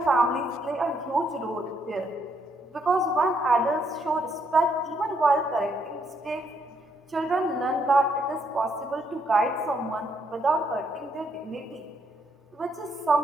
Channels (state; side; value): normal; both; correlation 0.74